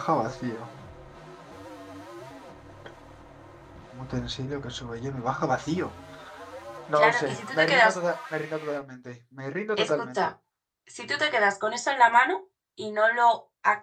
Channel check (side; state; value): both; identical; correlation 1.00